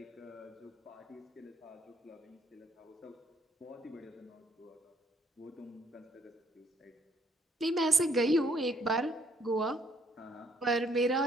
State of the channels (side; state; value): both; normal; correlation 0.67